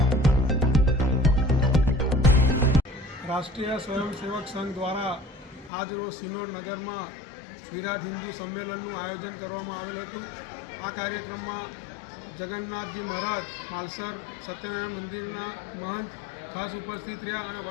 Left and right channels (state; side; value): drops out; right; at 5.7 s